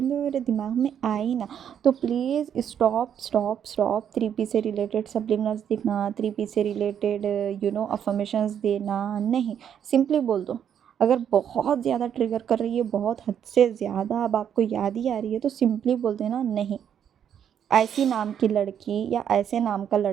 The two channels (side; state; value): left; quieter; 8.9 dB